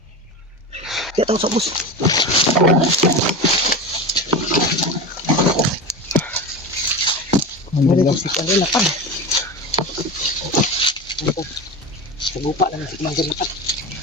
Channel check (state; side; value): normal; both; correlation 0.25